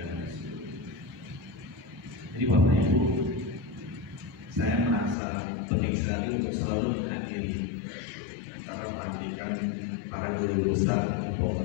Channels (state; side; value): drops out; right; at 5.2 s